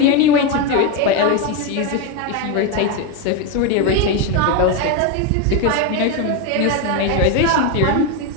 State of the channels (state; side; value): different; both; correlation 0.03